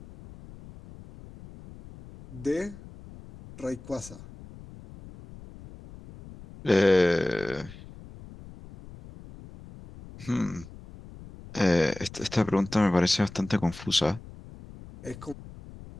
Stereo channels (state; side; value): noise; left; rumble, 17 dB below the sound